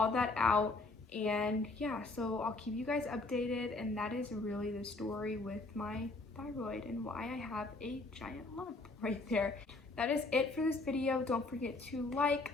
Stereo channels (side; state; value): right; quieter; 3.3 dB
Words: that out. And yeah, so I'll keep you guys updated, and that is really the story with my thyroid and why I have a giant lump right there. That is it for this video. Don't forget to like,